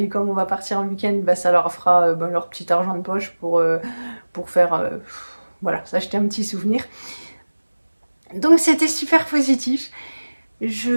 comme on va partir en week-end, ça leur fera leur petit argent de poche pour faire, voilà, s'acheter un petit souvenir. Donc c'était super positif.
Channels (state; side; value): inverted; both; correlation -1.00